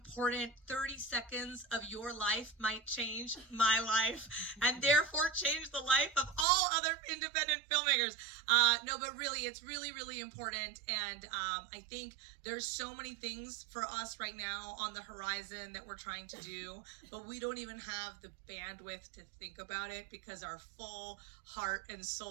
30 seconds of your life might change my life and therefore change the life of all other independent filmmakers. No, but really, it's really, really important. And I think there's so many things for us right now on the horizon that we're trying to do, but we don't even have the bandwidth to think about it because our full heart and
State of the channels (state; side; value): drops out; left; at 6.5 s